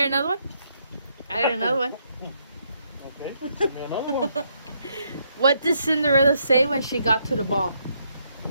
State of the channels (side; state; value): both; inverted; correlation -0.74